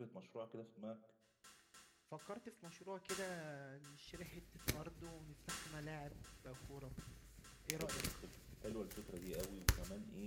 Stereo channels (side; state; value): both; identical; correlation 1.00